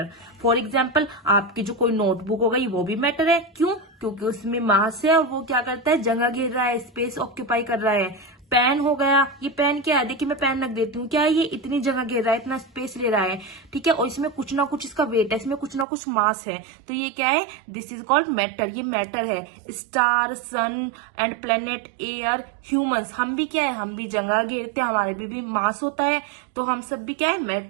फॉर एग्जाम्पल आपकी जो कोई नोटबुक हो गई वो भी मैटर है। क्यों? क्योंकि उसमें मास है और वो क्या करता है, जगह घेर रहा है, स्पेस ऑक्यूपाई कर रहा है। पेन हो गया, ये पेन क्या है, देखिए मैं पेन रख देती हूँ, क्या है, ये इतनी जगह घेर रहा है, इतना स्पेस ले रहा है। ठीक है, और इसमें कुछ ना कुछ इसका वेट है, इसमें कुछ ना कुछ मास है, तो ये क्या है, दिस इज कॉल्ड मैटर। ये मैटर है। Star, sun and planet, air, humans, हम भी क्या है, हम भी जगह घेरते हैं, हमारे भी मास होता है, तो हम सब भी क्या है,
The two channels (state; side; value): drops out; left; at 15.9 s